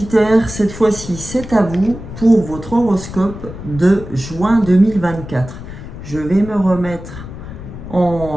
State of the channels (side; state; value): left; noise; rumble, 12 dB below the sound